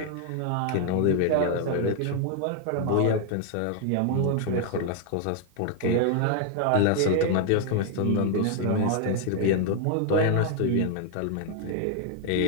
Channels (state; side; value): different; both; correlation 0.00